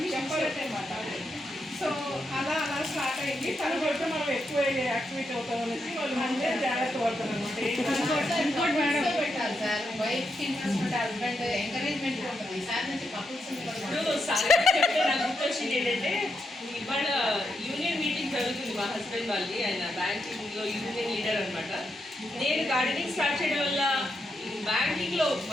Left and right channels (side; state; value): both; normal; correlation 0.83